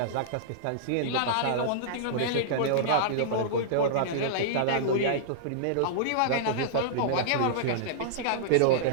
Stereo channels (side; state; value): both; different; correlation -0.02